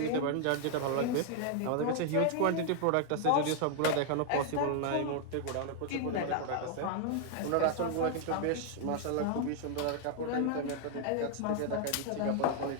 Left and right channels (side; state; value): both; different; correlation 0.00